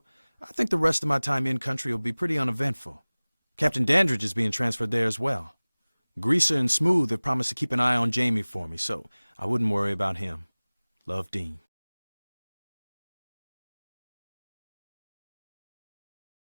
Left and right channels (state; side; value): inverted; both; correlation -1.00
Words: I think the rest of my time in country will be pretty uneventful. Captain Dandridge is being transferred there as well. Greaser and Smooth have promised to keep an eye on Jamie for me, so I wouldn't worry about him. Love, Dean.